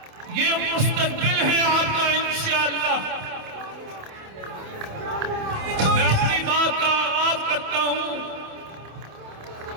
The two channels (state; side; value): late; left; 27 ms